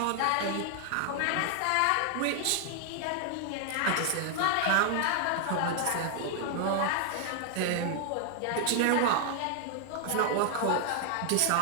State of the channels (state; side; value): different; both; correlation 0.00